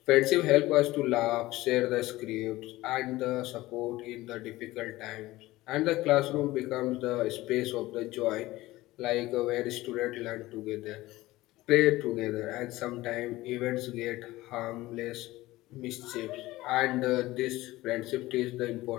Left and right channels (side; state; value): right; quieter; 18.0 dB